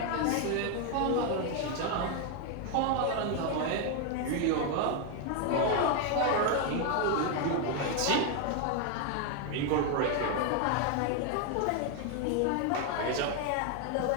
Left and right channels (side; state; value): both; different; correlation 0.01